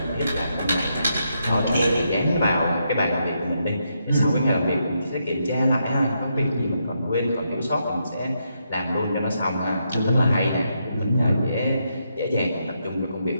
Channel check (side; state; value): both; inverted; correlation -0.80